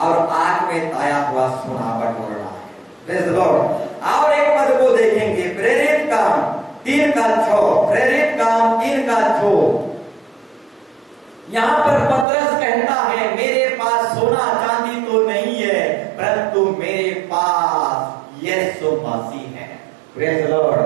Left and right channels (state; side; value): drops out; left; at 12.2 s